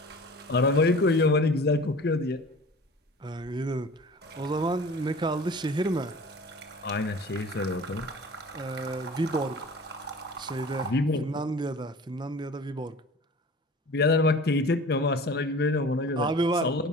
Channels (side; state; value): both; normal; correlation 0.41